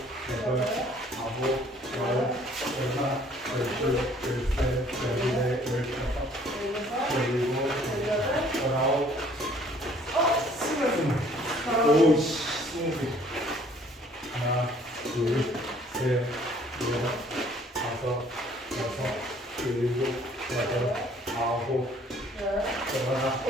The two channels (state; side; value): normal; both; correlation 0.58